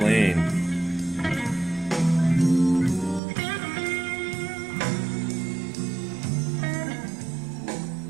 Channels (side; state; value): left; drops out; at 3.2 s